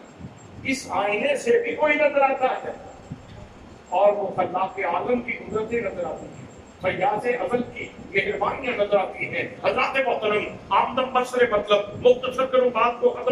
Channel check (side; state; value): both; identical; correlation 1.00